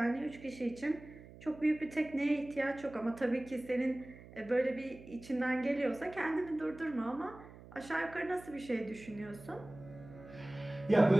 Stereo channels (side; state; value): right; noise; hum, 18 dB below the sound